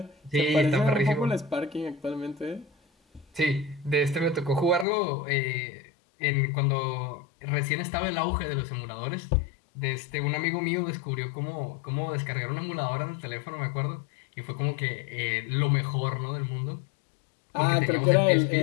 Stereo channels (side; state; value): right; drops out; at 4.9 s